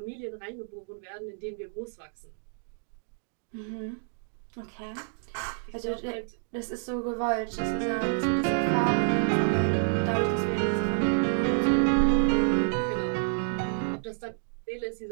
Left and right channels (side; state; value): left; silent; digital silence